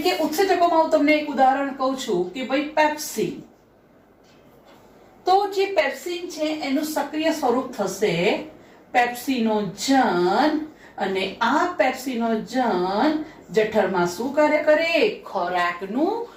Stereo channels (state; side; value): identical; both; correlation 1.00